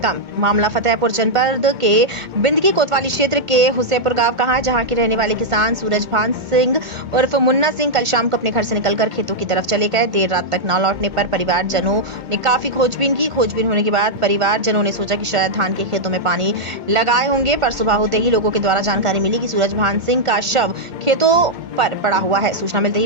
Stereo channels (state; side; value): late; left; 2.2 ms